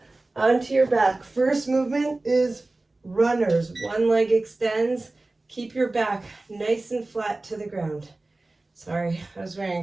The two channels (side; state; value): left; quieter; 3.0 dB